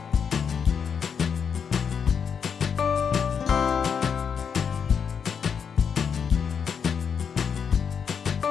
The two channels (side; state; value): right; quieter; 6.9 dB